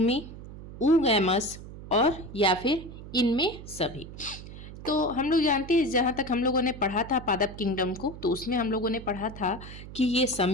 ऊगैमस और या फिर इनमें सभी। तो हम लोग जानते हैं, जहाँ तक हम लोगों ने पढ़ा था पादप किंगडम को, तो उसमें हम लोगों ने पढ़ा था कि ये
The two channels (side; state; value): right; noise; hum, 13 dB below the sound